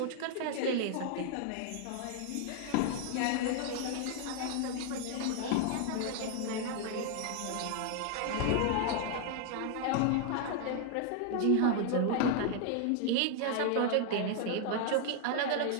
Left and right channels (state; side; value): different; both; correlation 0.00